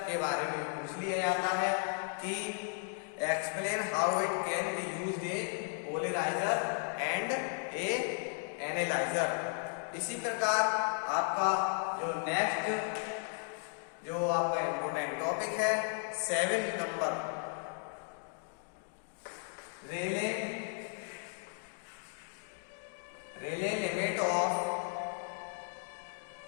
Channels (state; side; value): silent; right; 54 dB below the other